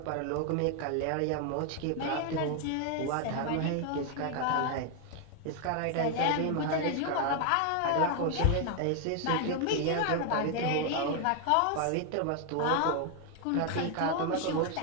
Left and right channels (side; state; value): both; different; correlation 0.01